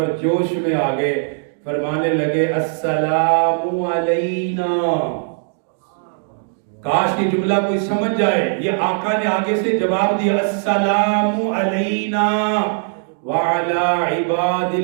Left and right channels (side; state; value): left; silent; digital silence